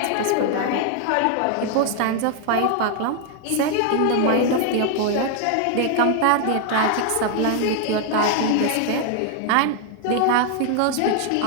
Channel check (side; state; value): both; different; correlation 0.00